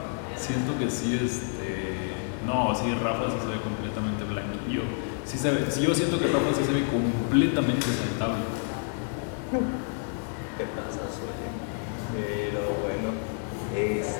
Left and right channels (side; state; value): right; silent; 59 dB below the other